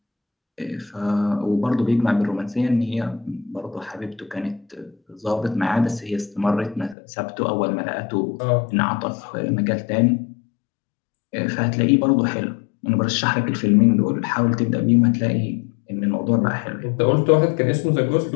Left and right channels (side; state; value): right; drops out; at 7.0 s